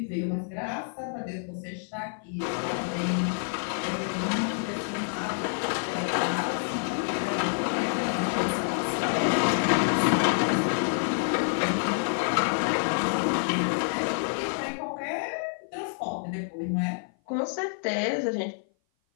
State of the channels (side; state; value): right; silent; 56 dB below the other